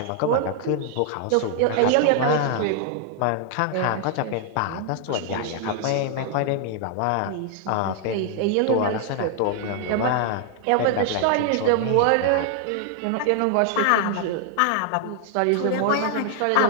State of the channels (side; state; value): both; different; correlation 0.00